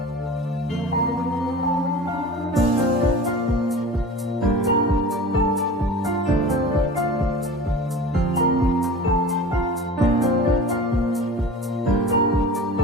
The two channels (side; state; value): both; normal; correlation 0.37